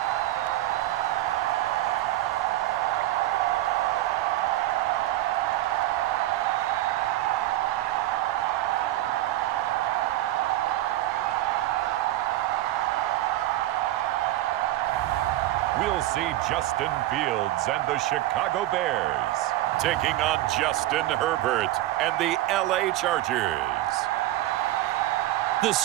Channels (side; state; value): left; quieter; 15.2 dB